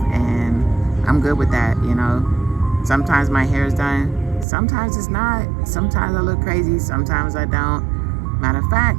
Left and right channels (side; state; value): left; drops out; at 4.5 s